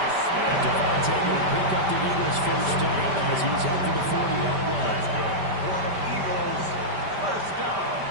And Devontae going to pick up the Eagles' first down as he's up to the 40-yard line. That's good. For Eagles, first down.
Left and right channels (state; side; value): late; left; 5.1 ms